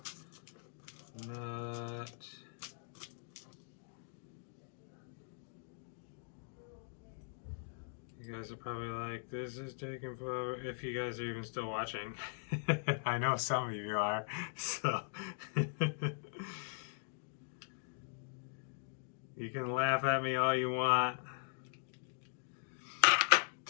Nut. You guys are probably like, this is taking forever, if you guys are even still watching. I know some of you are, so. You can laugh at me all you want.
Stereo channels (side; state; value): right; silent; digital silence